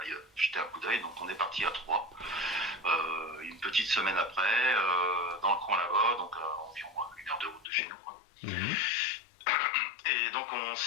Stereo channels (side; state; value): right; drops out; at 7.7 s